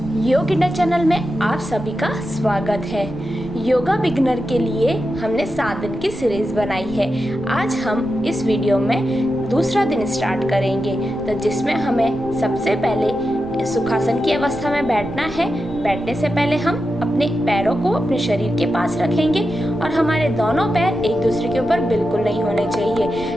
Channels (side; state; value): right; noise; rumble, 17 dB below the sound